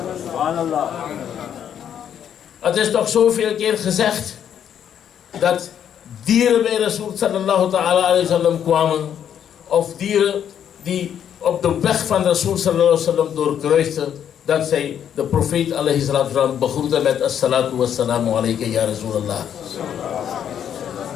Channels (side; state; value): right; quieter; 9.2 dB